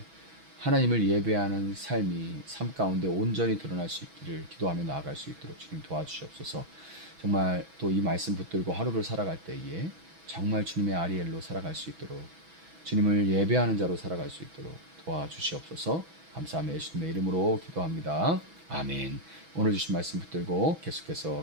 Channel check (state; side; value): late; left; 6.1 ms